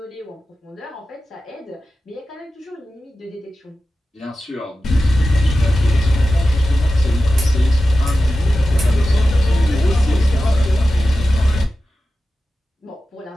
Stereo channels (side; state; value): both; normal; correlation 0.94